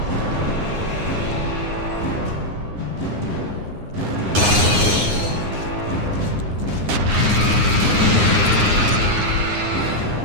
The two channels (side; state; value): left; late; 9.7 ms